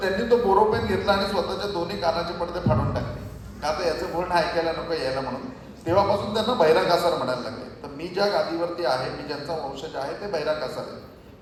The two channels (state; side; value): identical; both; correlation 1.00